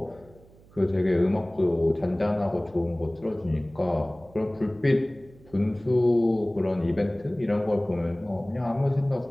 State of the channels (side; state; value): right; noise; hum, 26 dB below the sound